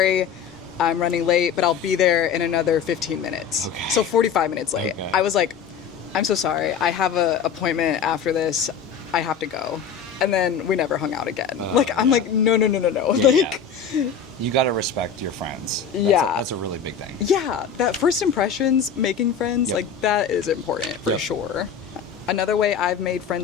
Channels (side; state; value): right; quieter; 6.8 dB